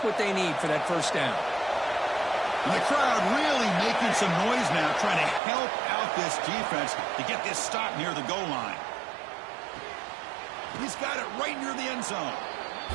what they need for that first down. And the crowd really making some noise now, trying to help out this defense to get this stop near the goal line. He's got it right near the end zone.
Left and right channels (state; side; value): drops out; left; at 5.4 s